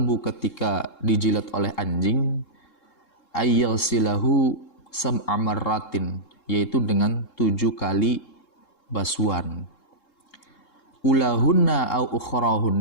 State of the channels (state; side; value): late; right; 3.7 ms